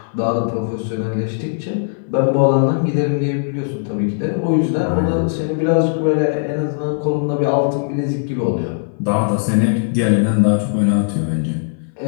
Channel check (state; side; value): silent; right; 60 dB below the other